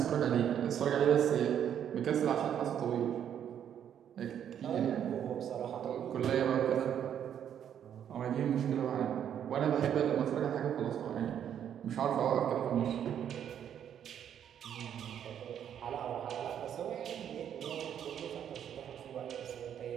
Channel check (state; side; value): quieter; left; 9.3 dB